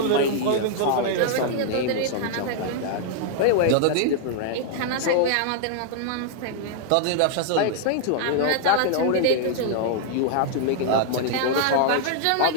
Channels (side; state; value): both; different; correlation -0.01